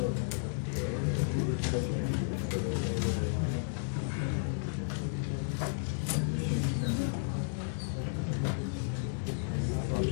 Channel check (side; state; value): right; silent; digital silence